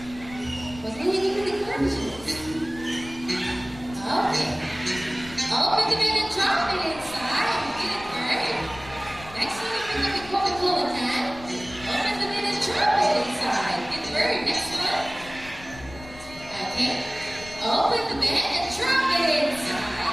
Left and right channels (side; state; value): left; noise; rumble, 18 dB below the sound